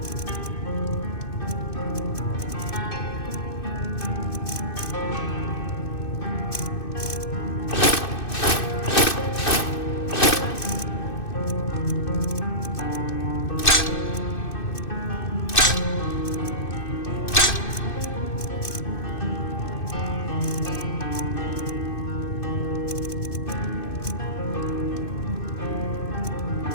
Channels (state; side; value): late; right; 2.6 ms